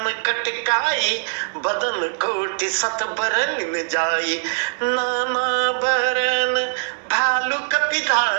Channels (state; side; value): silent; left; 65 dB below the other